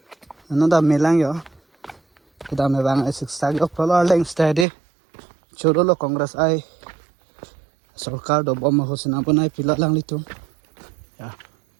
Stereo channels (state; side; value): drops out; left; at 4.7 s